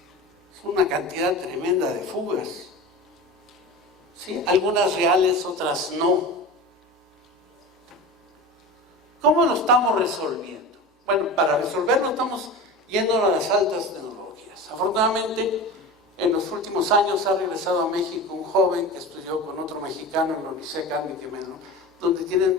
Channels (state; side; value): normal; both; correlation 0.31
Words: Es una cantidad tremenda de fugas. ¿Sí? Algunas reales, otras no. ¿Cómo lo estamos resolviendo? Bueno, para resolverlo estamos yendo a las altas tecnologías. Afortunadamente, En los últimos años ha regresado a México un joven que estudió con otro mexicano en la Universidad Carmen Quimeno, donde